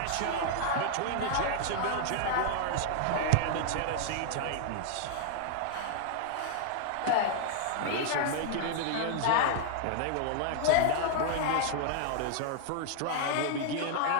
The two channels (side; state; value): both; different; correlation -0.01